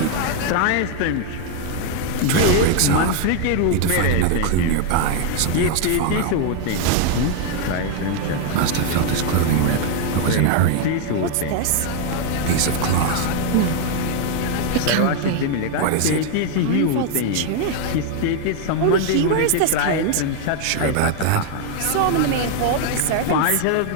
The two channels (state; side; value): different; both; correlation 0.00